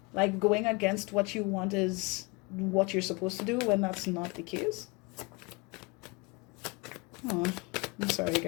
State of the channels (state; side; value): quieter; right; 27.4 dB